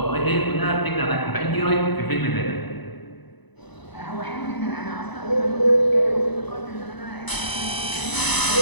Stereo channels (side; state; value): right; late; 1.0 ms